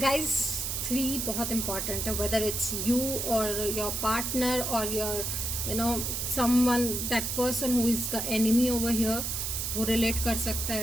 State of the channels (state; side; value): noise; right; hiss, 2 dB below the sound